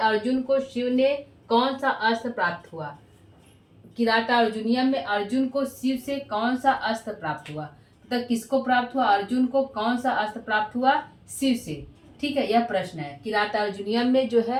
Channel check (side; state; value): both; identical; correlation 1.00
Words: को शिव ने कौन सा अस्त्र प्राप्त हुआ। किराता अर्जुनियम में अर्जुन को शिव से कौन सा अस्त्र प्राप्त हुआ, मतलब किसको प्राप्त हुआ, अर्जुन को कौन सा अस्त्र प्राप्त हुआ, शिव से। ठीक है, यह प्रश्न है। किराता अर्जुनियम में जो